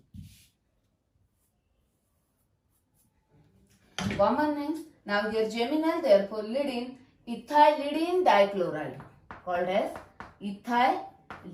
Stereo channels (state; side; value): identical; both; correlation 1.00